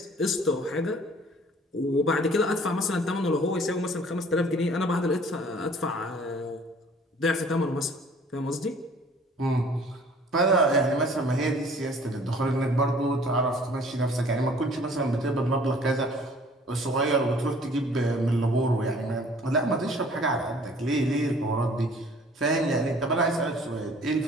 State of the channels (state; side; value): normal; both; correlation 0.53